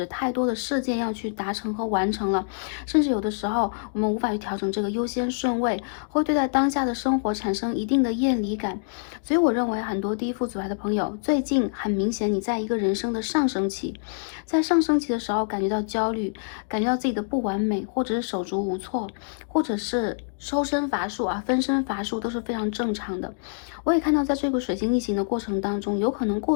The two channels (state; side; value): silent; right; digital silence